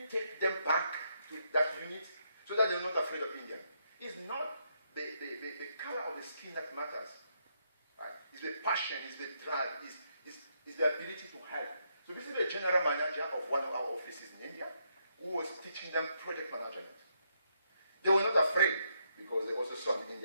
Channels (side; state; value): both; inverted; correlation -0.77